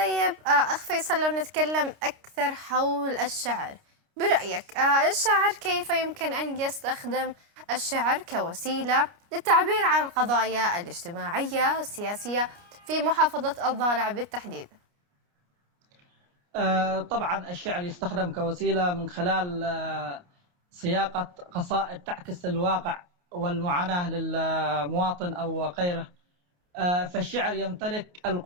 أخ فيصل، لو نتكلم أكثر حول الشعر، برأيك الشاعر كيف يمكن أن يستخدم الشعر كوسيلة للتعبير عن القضايا الاجتماعية السياسية في محافظة الضالع بالتحديد؟ طبعا الشعر يستخدم كوسيلة من خلال صياغة قصائد تعكس الواقع والمعاناة للمواطن أو غيره. فالشعر يمتلك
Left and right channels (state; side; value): late; left; 29 ms